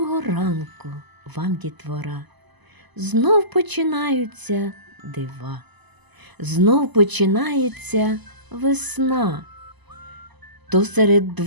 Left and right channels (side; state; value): left; late; 1.0 ms